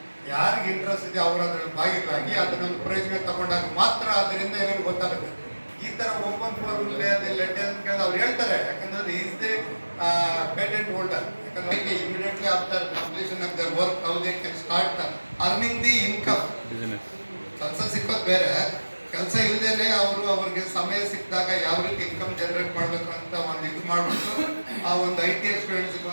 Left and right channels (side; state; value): both; inverted; correlation -1.00